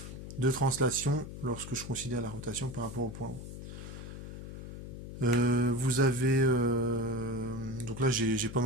de translation lorsque je considère la rotation par rapport au point haut. Vous avez... donc là, j'ai pas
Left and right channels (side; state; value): left; noise; hum, 10 dB below the sound